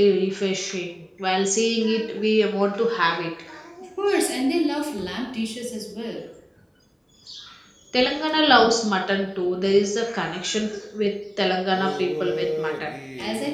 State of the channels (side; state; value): both; identical; correlation 1.00